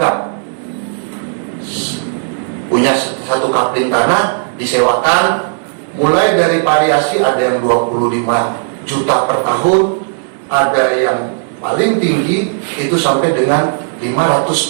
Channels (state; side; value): silent; left; digital silence